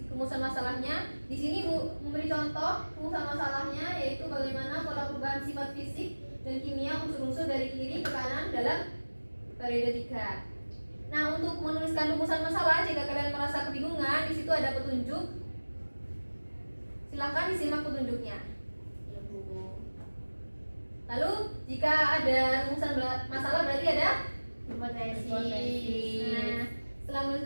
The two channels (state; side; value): inverted; both; correlation -1.00